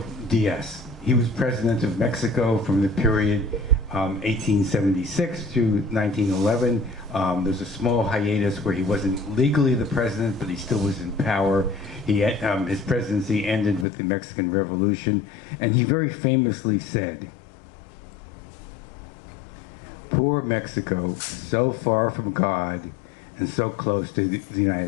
Diaz. He was president of Mexico from the period 1876 to 1911. There's a small hiatus where he wasn't legally the president, but he still was in power. His presidency ended with the Mexican Revolution, and he very famously said, "Poor Mexico, so far from God and so close to the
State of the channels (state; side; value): drops out; right; at 13.9 s